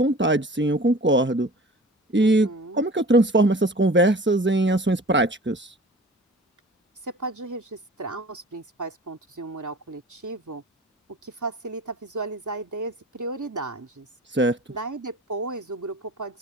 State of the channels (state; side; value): normal; both; correlation 0.43